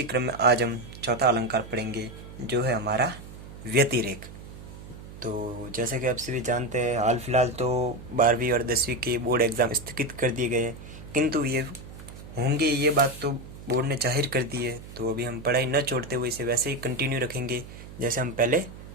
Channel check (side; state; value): right; noise; hum, 15 dB below the sound